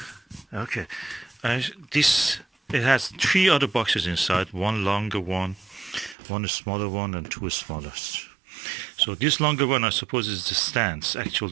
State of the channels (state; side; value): drops out; left; at 6.2 s